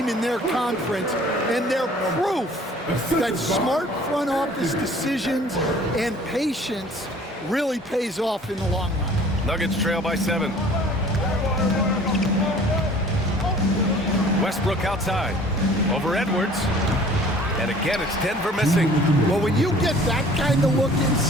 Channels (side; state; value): both; normal; correlation 0.50